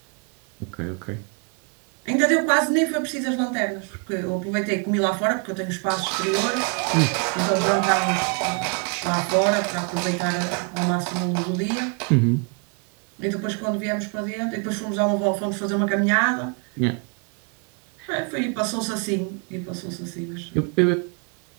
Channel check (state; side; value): quieter; left; 35.5 dB